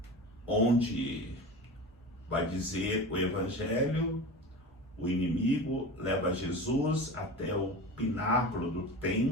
onde vai dizer o Evangelho, o inimigo leva Jesus até o pináculo do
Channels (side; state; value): both; normal; correlation 0.31